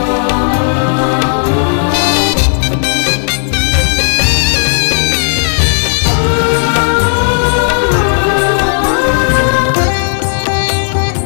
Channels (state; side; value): silent; right; 67 dB below the other